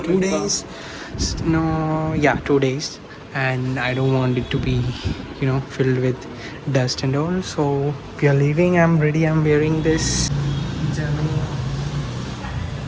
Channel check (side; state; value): both; identical; correlation 1.00